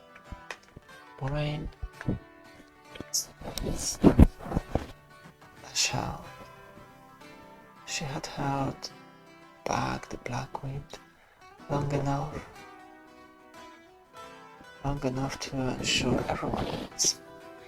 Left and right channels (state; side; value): identical; both; correlation 1.00